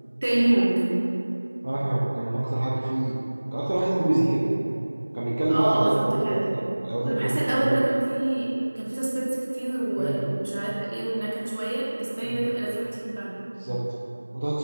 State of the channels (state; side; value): inverted; both; correlation -1.00